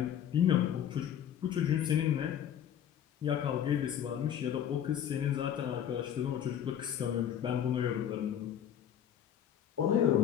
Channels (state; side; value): quieter; right; 9.7 dB